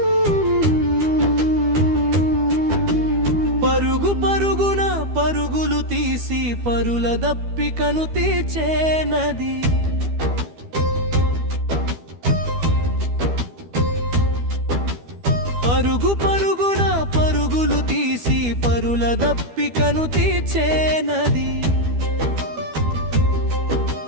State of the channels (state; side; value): late; left; 12 ms